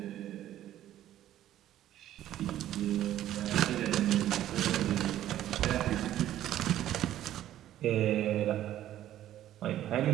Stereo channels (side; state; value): left; quieter; 12.6 dB